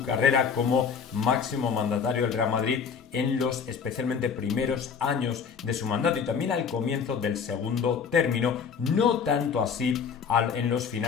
carrera como máximo mandatario del Real Madrid en los especialmente primeros años de su mandato, y también al comienzo del segundo término, no tanto así en los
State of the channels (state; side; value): quieter; right; 6.4 dB